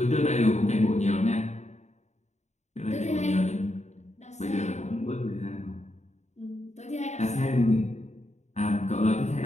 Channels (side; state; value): right; late; 0.33 ms